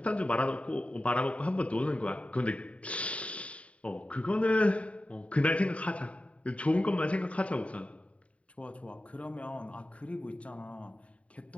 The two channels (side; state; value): right; late; 0.065 ms